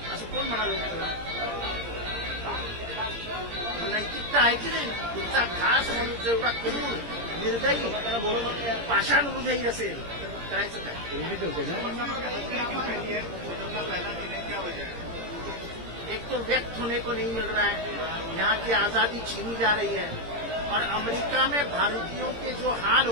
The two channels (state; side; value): late; left; 17 ms